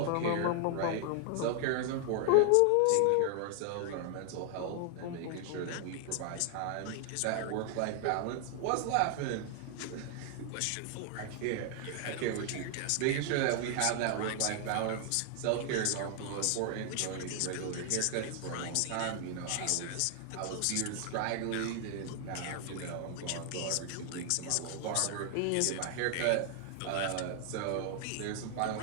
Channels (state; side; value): different; both; correlation 0.00